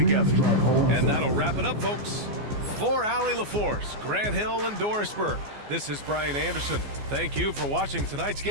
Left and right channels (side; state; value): left; late; 14 ms